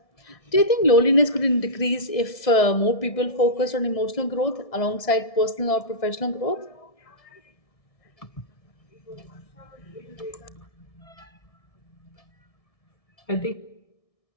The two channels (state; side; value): late; right; 1.6 ms